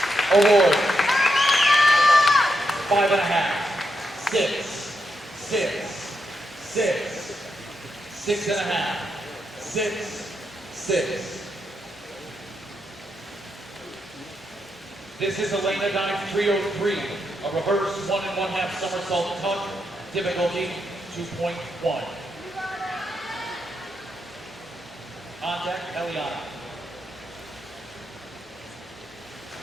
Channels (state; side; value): normal; both; correlation 0.83